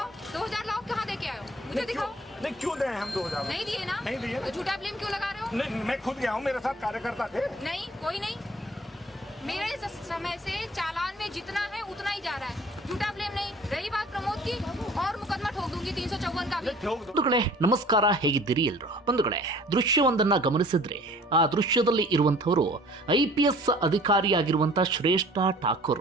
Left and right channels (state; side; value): normal; both; correlation 0.51